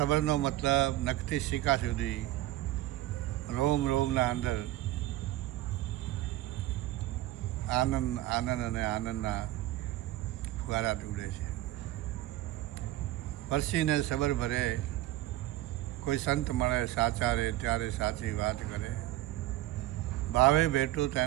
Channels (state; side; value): quieter; left; 15.9 dB